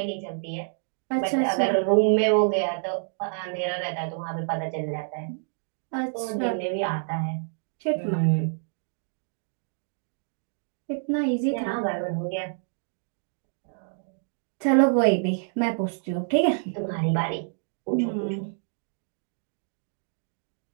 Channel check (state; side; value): silent; left; digital silence